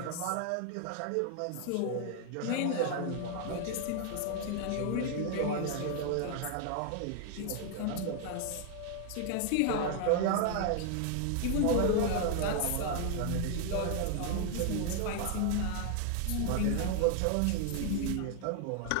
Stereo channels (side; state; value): both; different; correlation 0.00